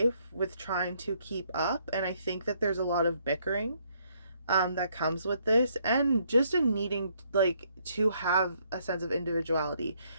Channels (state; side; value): inverted; both; correlation -0.70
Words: with trying to keep up. And I think that there's a lot of bickering that comes with this, and just a needing like to have a sense of individuality,